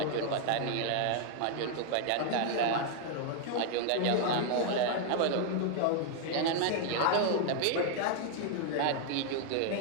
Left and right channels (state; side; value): different; both; correlation 0.00